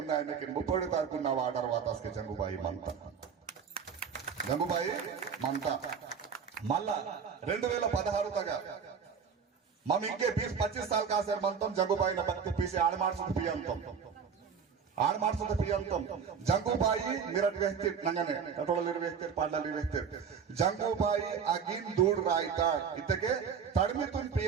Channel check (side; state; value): left; quieter; 6.6 dB